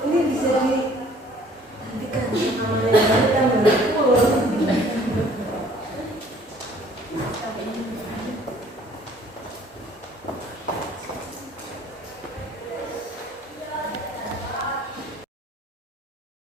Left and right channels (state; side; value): normal; both; correlation 0.56